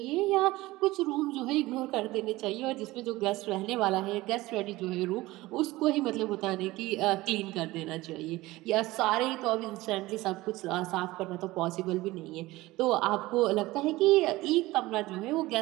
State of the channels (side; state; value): left; quieter; 19.0 dB